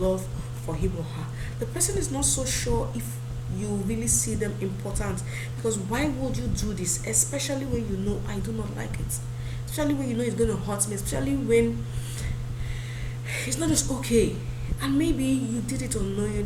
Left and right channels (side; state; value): both; identical; correlation 1.00